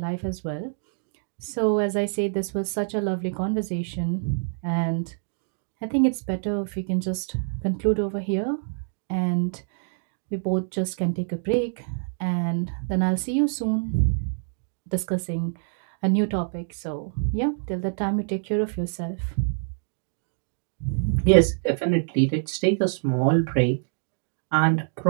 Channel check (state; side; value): silent; left; digital silence